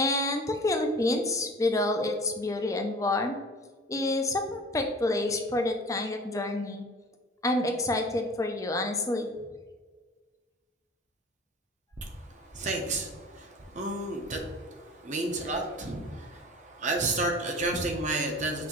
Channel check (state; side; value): normal; both; correlation 0.42